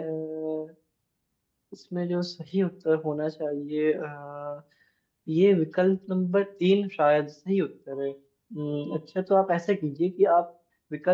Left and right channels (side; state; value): both; identical; correlation 1.00